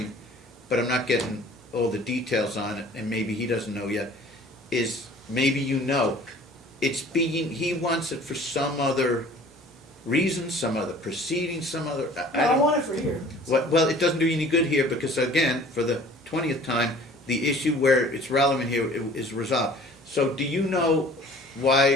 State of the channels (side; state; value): both; normal; correlation 0.49